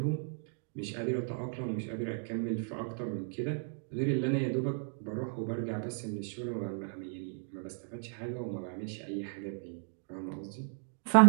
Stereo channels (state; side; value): silent; left; digital silence